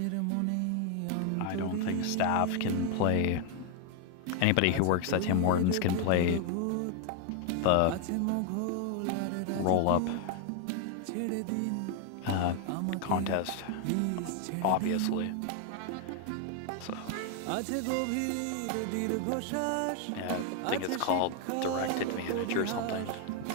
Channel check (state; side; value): different; both; correlation 0.01